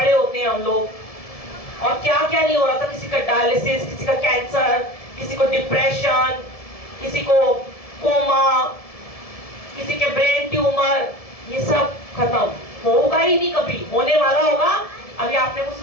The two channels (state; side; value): late; right; 1.7 ms